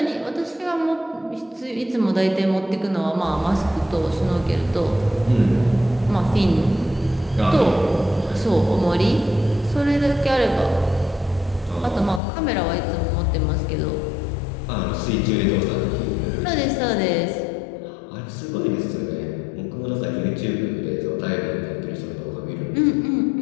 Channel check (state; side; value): drops out; right; at 12.2 s